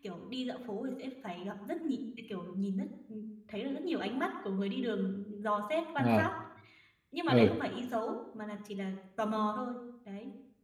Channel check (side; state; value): both; identical; correlation 1.00